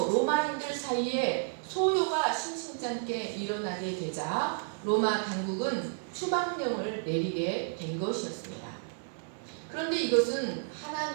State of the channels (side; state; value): left; silent; 57 dB below the other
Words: 로마인들 사이에 소요가 심심찮게 일어나게 되자 로마 당국은 추방령을 내리게 된 것이었습니다. 그런데 이것은